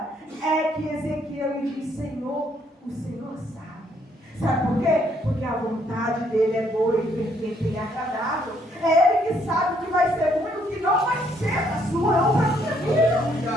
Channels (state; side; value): normal; both; correlation 0.69